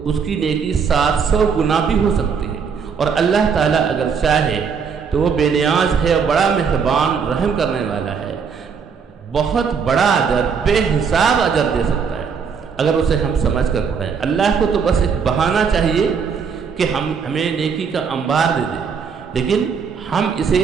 اس کی نیکی 700 گنا بھی ہو سکتی ہے، اور اللہ تعالیٰ اگر چاہے تو وہ بے نیاز ہے اور بڑا مہربان رحم کرنے والا ہے، بہت بڑا اجر، بے حساب اجر دے سکتا ہے اگر اسے ہم سمجھ کر پڑھیں۔ اللہ کو تو بس ایک بہانہ چاہیے کہ ہمیں نیکی کا انبار دے دے، لیکن ہم اسے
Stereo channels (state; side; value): quieter; left; 6.2 dB